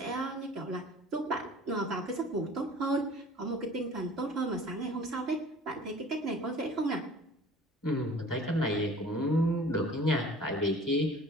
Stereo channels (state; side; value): normal; both; correlation 0.46